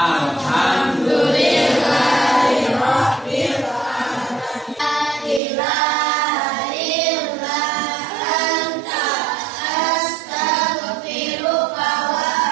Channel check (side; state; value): left; drops out; at 5.4 s